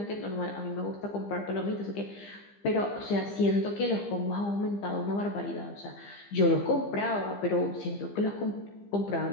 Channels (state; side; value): late; right; 15 ms